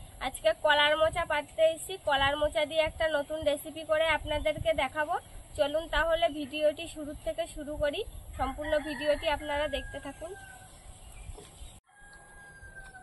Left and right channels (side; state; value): both; identical; correlation 1.00